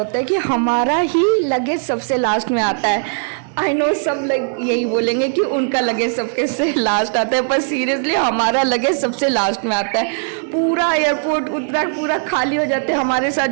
है कि हमारा ही लगेज सबसे लास्ट में आता है। आई नो सब लोग यही बोलेंगे कि उनका लगेज सबके से लास्ट आता है, पर सीरियसली हमारा लगेज सबसे लास्ट में आता है। पूरा एयरपोर्ट उतना पूरा खाली हो जाते हैं। हमारे साथ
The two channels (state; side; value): silent; left; digital silence